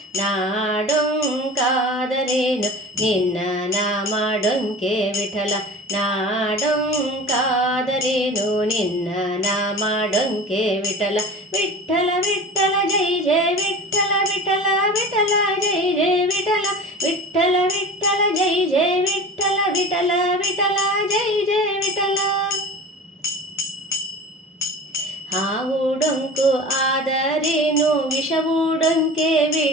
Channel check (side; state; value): both; normal; correlation 0.36